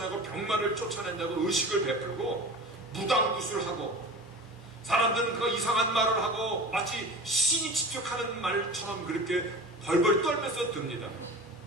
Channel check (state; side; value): normal; both; correlation 0.35